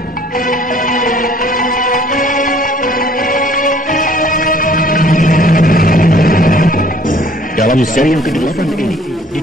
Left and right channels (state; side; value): normal; both; correlation 0.56